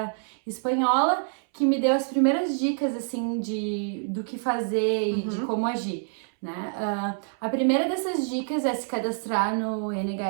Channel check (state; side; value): silent; left; 61 dB below the other